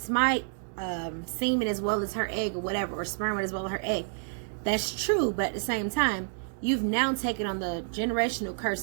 semen as well as her egg or whatever, or sperm as well as her egg. That's true, but at the same time, you've now taken on the generational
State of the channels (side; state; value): left; silent; digital silence